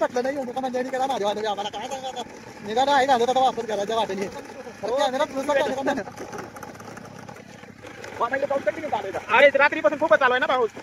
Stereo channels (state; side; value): identical; both; correlation 1.00